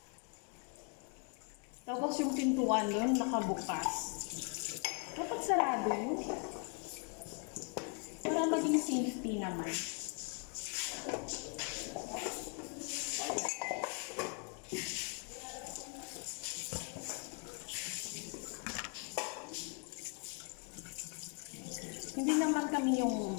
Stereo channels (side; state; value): right; quieter; 38.0 dB